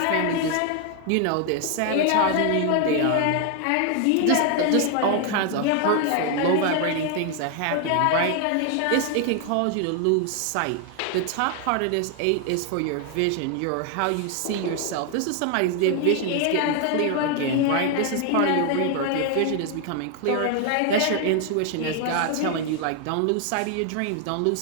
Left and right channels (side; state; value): both; different; correlation 0.01